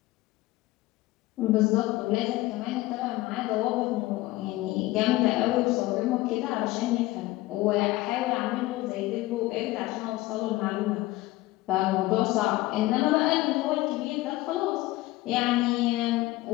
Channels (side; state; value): right; quieter; 18.5 dB